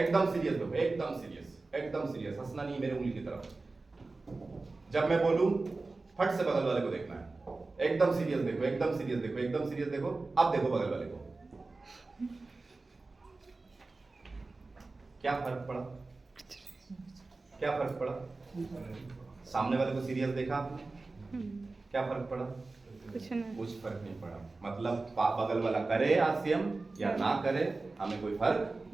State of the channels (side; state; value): left; quieter; 3.5 dB